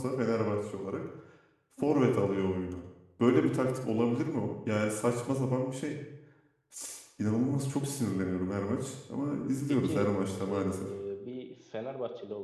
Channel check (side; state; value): both; identical; correlation 1.00